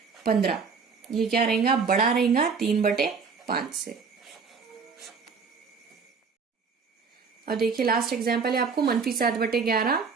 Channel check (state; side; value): quieter; left; 5.4 dB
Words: ये क्या रहेगा? बड़ा रहेगा 3/5 से। अब देखिए लास्ट एग्जाम्पल है आपको -7/11